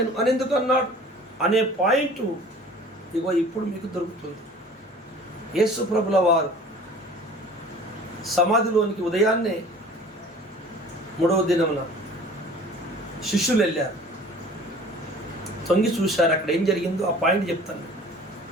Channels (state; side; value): normal; both; correlation 0.46